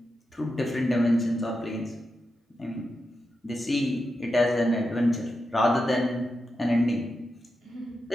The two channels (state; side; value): normal; both; correlation 0.88